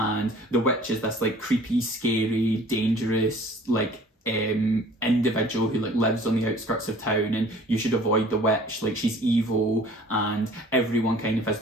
the witch is this like creepy, scary, dangerous, like individual who like lives on the outskirts of town, and you should avoid the witch, like she's evil, and everyone kind of has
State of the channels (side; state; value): both; normal; correlation 0.50